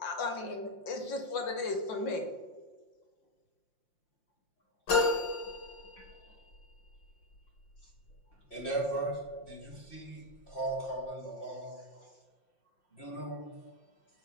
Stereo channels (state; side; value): late; right; 5.7 ms